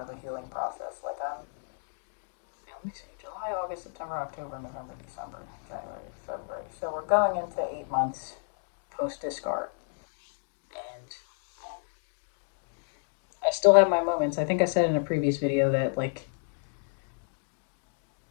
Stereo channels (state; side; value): silent; right; 57 dB below the other